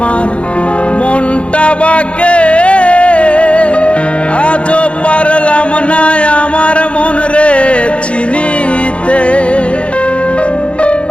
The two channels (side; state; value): right; late; 0.060 ms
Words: মনটা বাকে, আজও পারলাম না আমার মন রে চিনিতে।